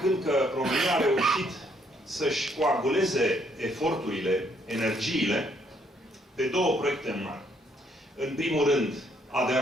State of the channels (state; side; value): normal; both; correlation 0.69